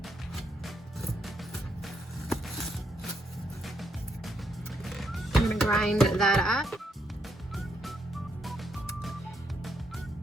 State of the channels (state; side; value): normal; both; correlation 0.77